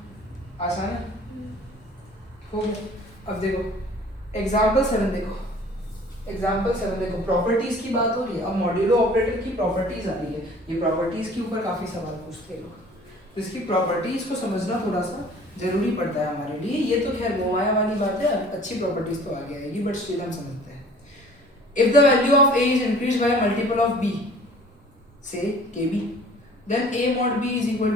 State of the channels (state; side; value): normal; both; correlation 0.49